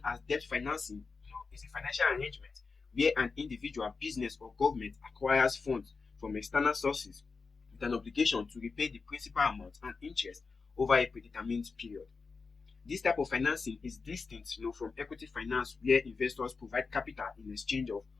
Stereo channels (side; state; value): right; quieter; 4.6 dB